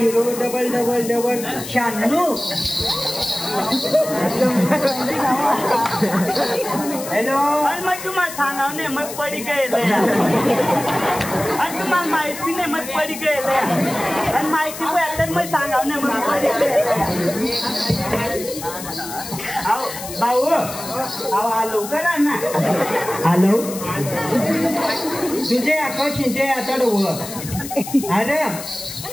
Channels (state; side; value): noise; left; hiss, 10 dB below the sound